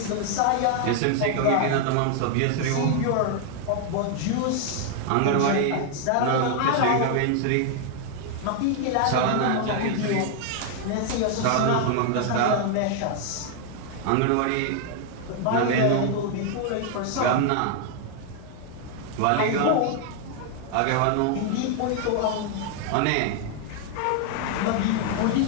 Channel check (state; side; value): different; both; correlation 0.00